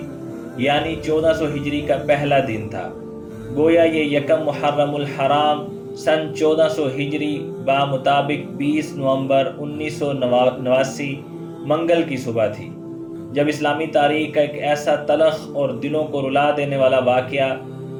یعنی 1400 ہجری کا پہلا دن تھا۔ گویا یہ یکم محرم الحرام سن 1400 ہجری بمطابق 20 نومبر 1989 منگل کی صبح تھی، جب اسلامی تاریخ کا ایک ایسا تلخ اور دلوں کو رلا دینے والا واقعہ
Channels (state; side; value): identical; both; correlation 1.00